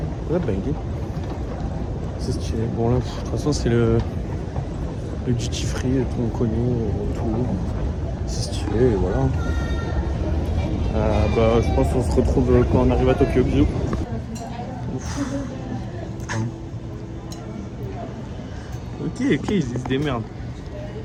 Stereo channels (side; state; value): both; identical; correlation 1.00